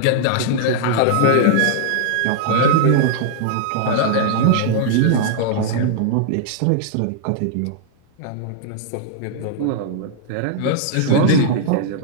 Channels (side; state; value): both; different; correlation -0.01